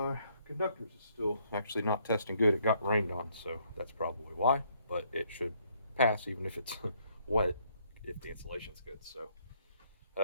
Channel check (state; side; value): inverted; both; correlation -0.68